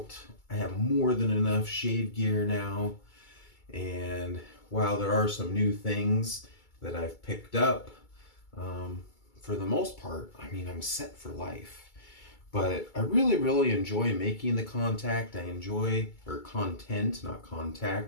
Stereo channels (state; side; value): late; right; 2.3 ms